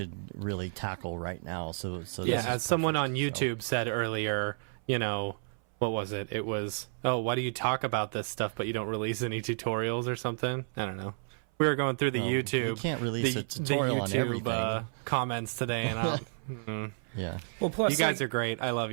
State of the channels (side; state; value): left; silent; 57 dB below the other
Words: really tackle right now. So as someone on YouTube said earlier, what was it? It was, why do you talk about this stuff but you don't release any tutorials or something? I don't know. We were going through the YouTube. You can't release a tutorial on everything. Comments today, and yeah. Well, plus you guys are great. I love